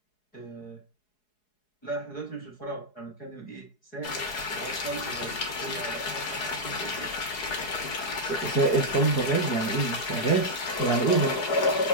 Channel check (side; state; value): right; late; 4.7 ms